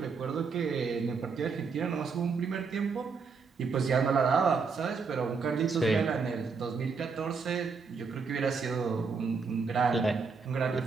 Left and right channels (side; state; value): left; quieter; 5.1 dB